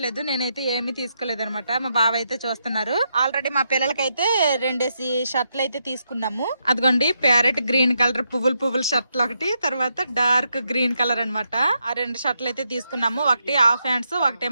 నేనైతే ఏమీ తీసుకోలేదు అనమాట. మా బావ అయితే చూస్తున్నారు. ఆల్రెడీ మా పిల్లలకైతే 2 షర్ట్లు అయితే తీసుకున్నాము. అదిగోండి ప్యారెట్ గ్రీన్ కలర్ పువ్వులు షర్ట్లు ఒకటి, తర్వాత డార్క్ గ్రీన్ కలర్ అనమాట. ఆ 2 షర్ట్లు అయితే తీసుకున్నాము. ఒకటి హాఫ్ హ్యాండ్స్,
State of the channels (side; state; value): both; inverted; correlation -0.81